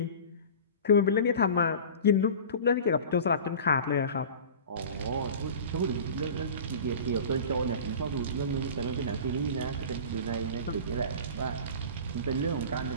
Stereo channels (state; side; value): inverted; both; correlation -0.37